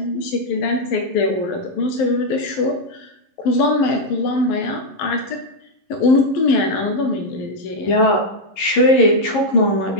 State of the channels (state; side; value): late; right; 11 ms